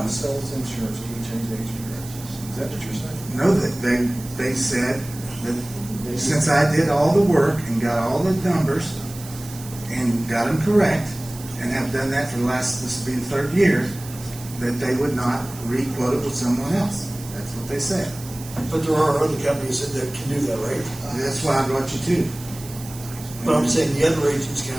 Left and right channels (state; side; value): noise; right; hiss, 15 dB below the sound